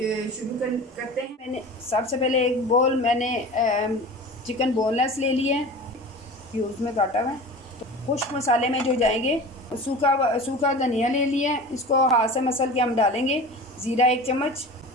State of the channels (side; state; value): both; normal; correlation 0.36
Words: शुरू करते हैं। मैंने सबसे पहले एक बोल मैंने चिकन बोनलेस ले लिया है, क्यूब्स में काटा हुआ है। तो खुश्क मसाले में जो जाएंगे, सूखा धनिया ले लिया है, इसको हाथ से मसल के हम डालेंगे। ज़ीरा 1 चम्मच,